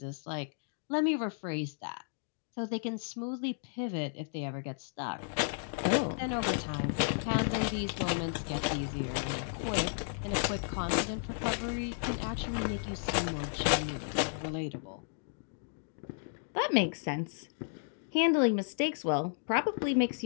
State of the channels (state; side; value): silent; right; digital silence